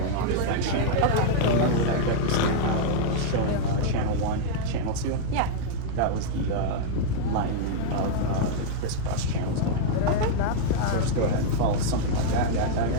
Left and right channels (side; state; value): both; different; correlation -0.01